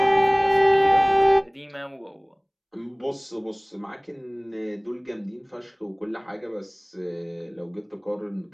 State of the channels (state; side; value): identical; both; correlation 1.00